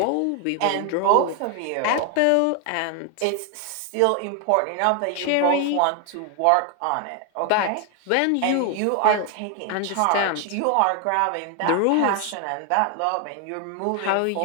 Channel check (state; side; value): different; both; correlation 0.01